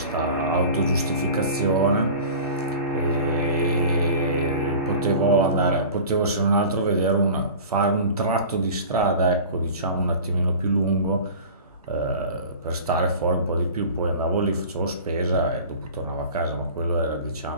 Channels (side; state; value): both; inverted; correlation -0.38